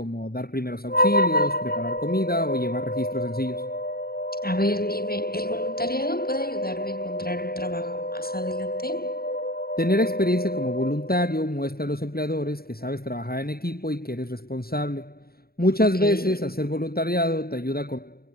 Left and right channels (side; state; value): right; late; 0.44 ms